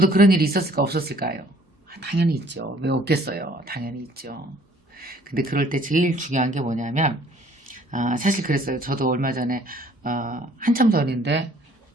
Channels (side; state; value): both; normal; correlation 0.58